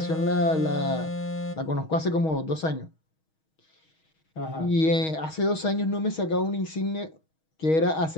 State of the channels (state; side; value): late; right; 6.3 ms